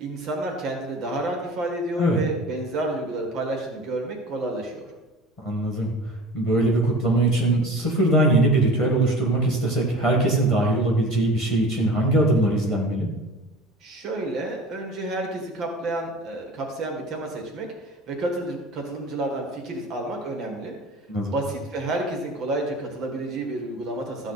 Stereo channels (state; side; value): normal; both; correlation 0.40